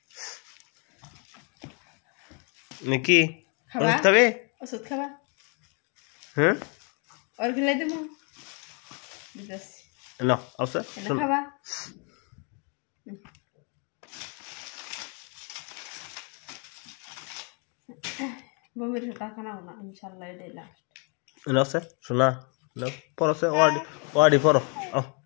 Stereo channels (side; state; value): right; quieter; 36.4 dB